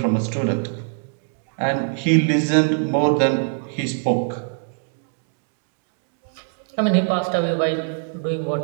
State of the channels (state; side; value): silent; left; digital silence